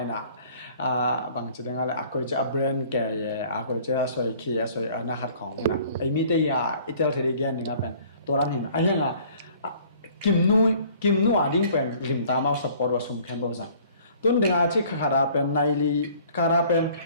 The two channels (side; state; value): both; inverted; correlation -0.54